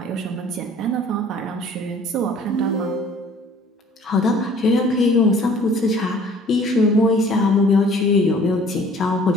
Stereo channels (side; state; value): both; normal; correlation 0.53